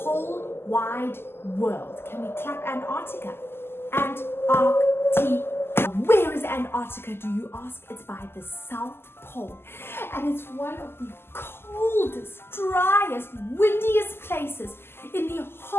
wide world. Can we clap Antarctica? Antarctica. Where is Antarctica, do you ask? It's by the South Pole, and it's one of the coldest, driest, windiest places in the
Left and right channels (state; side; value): late; right; 0.12 ms